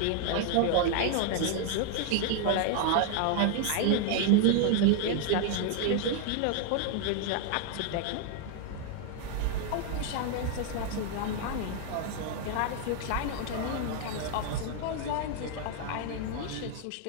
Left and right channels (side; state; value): both; different; correlation 0.00